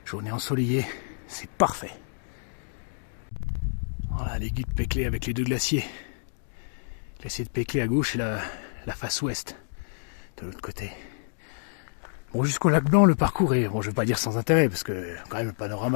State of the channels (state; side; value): silent; right; digital silence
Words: Journée ensoleillée, c'est parfait. Voilà l'écueil de Peclet avec les deux glaciers. Le glacier de Peclet à gauche et la face ouest de l'autre côté. Bon, jusqu'au lac Blanc, le parcours est, bon, je ne vais pas dire sans intérêt, parce que quand même le